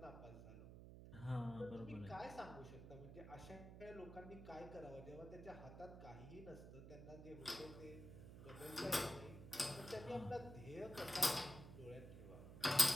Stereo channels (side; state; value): right; noise; hum, 12 dB below the sound